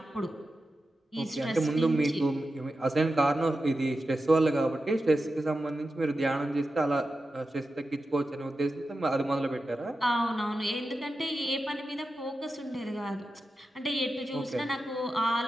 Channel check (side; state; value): both; normal; correlation 0.91